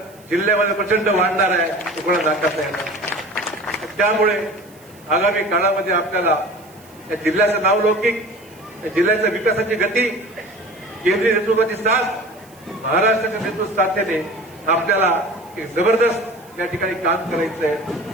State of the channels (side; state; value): right; noise; hiss, 27 dB below the sound